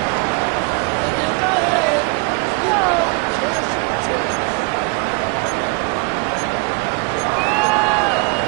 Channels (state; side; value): quieter; left; 31.9 dB